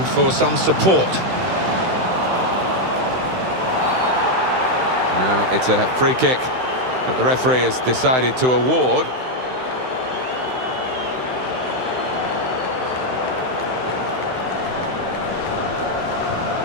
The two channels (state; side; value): late; left; 16 ms